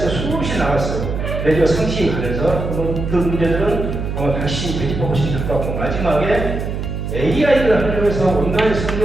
수없이 나왔어요. 내조 상식에 관해서 그 문제들은 다시 되짚어보시면 될 것 같고 마지막에 AI를 하려고 해서 온라인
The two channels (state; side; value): noise; right; hum, 4 dB below the sound